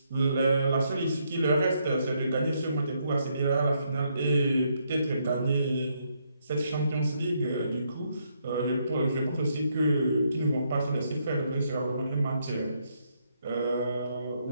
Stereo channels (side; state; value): both; inverted; correlation -0.75